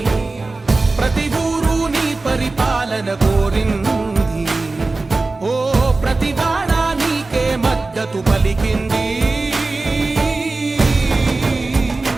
ప్రతి ఊరు నీ పరిపాలన కోరింది ఓ ప్రతివాడ నీకే మద్దతు పలికింది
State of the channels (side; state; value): left; quieter; 3.4 dB